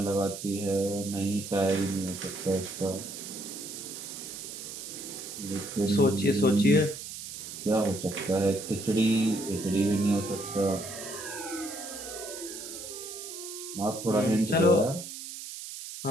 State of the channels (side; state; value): right; noise; hiss, 9 dB below the sound